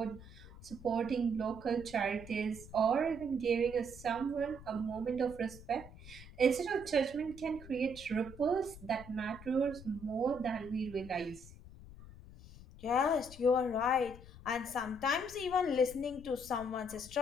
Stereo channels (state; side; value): noise; left; rumble, 17 dB below the sound